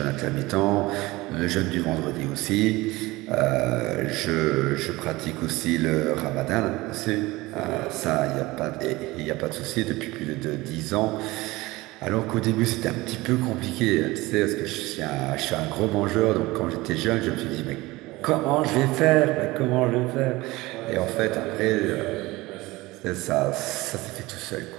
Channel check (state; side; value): quieter; left; 20.5 dB